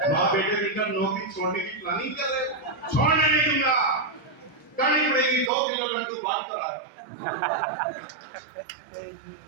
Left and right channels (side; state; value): left; drops out; at 5.5 s